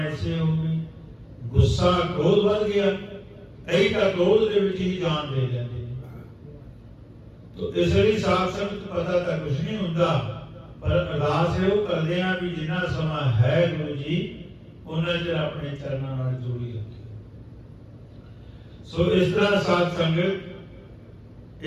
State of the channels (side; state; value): both; identical; correlation 1.00